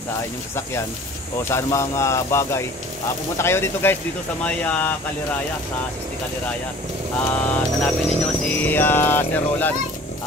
inyong sasakyan o sa anumang bagay, pumunta kayo dito guys, dito sa may Kaliraya, sa 60 Kaliraya. Hanapin ninyo si Sir Roland.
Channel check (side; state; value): both; normal; correlation 0.47